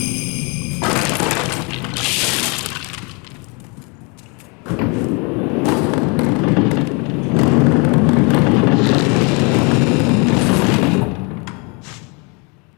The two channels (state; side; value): quieter; right; 31.9 dB